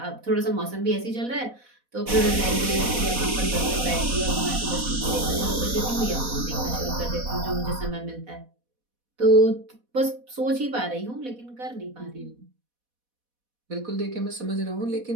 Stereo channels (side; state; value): left; late; 4.1 ms